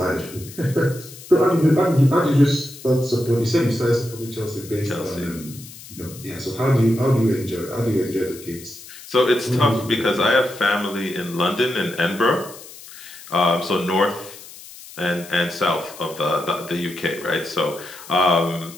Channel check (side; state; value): left; noise; hiss, 17 dB below the sound